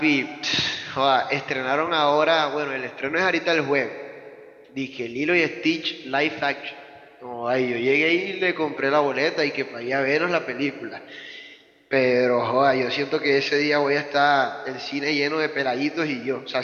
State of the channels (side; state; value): both; identical; correlation 1.00